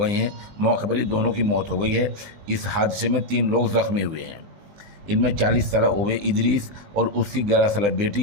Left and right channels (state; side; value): late; left; 20 ms